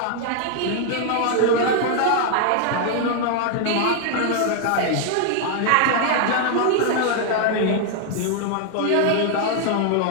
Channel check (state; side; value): different; both; correlation 0.00